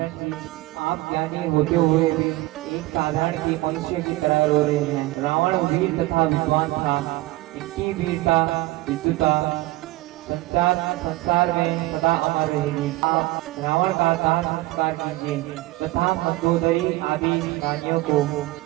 जी, आप ज्ञानी होते हुए भी एक साधारण के मनुष्य की तरह रो रहे हैं। रावण वीर तथा विद्वान था, इनकी वीरता विद्युता संसार में सदा अमर रहेगी। आप रावण का दाह संस्कार कीजिए तथा मंदोदरी आदि रानियों को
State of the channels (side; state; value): left; quieter; 18.8 dB